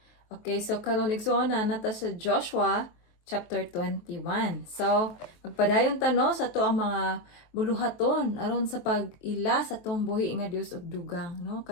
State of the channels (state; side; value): late; right; 23 ms